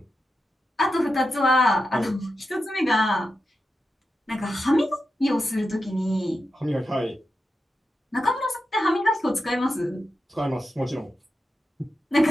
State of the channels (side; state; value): both; normal; correlation 0.89